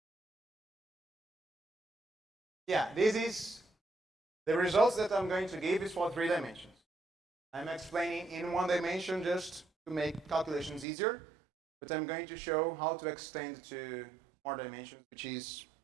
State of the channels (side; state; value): left; drops out; at 10.9 s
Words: Yeah, this is the results that I'm going to give is for 3 dimensions. I'm explaining in 1 dimension just to make calculations easier, but I'm going to show how to extend to more dimensions, which is